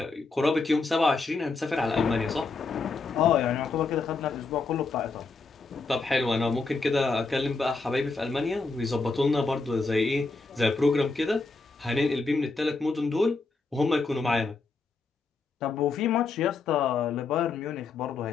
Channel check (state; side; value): quieter; right; 4.0 dB